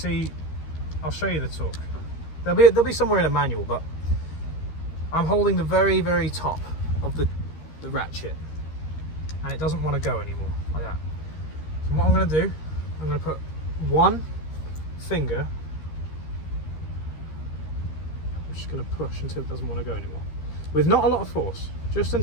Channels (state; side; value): late; right; 13 ms